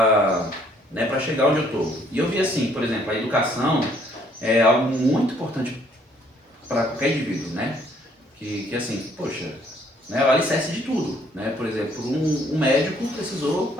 chegar onde eu tô. E eu vi assim, por exemplo, a educação é algo muito importante para qualquer indivíduo, né? Que assim, poxa, né, é o alicerce de tudo, né? Por exemplo, um médico precisou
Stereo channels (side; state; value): both; normal; correlation 0.64